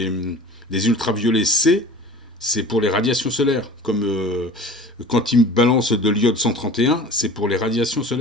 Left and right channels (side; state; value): both; normal; correlation 0.41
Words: ultraviolets C, c'est pour les radiations solaires. Comme quand ils balancent de l'iode 131, c'est pour les radiations